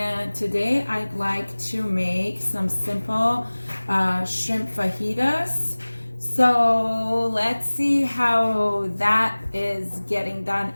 today I'd like to make some simple shrimp fajitas. So let's see how that is getting done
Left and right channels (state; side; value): inverted; both; correlation -1.00